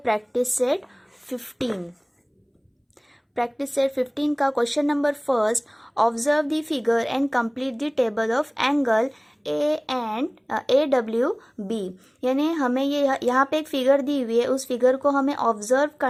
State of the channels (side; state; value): both; identical; correlation 1.00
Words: प्रैक्टिस सेट 15। प्रैक्टिस सेट 15 का question number first, observe the figure and complete the table of angle AWB। यानी हमें ये यहाँ पे एक फिगर दी हुई है, उस फिगर को हमें ऑब्जर्व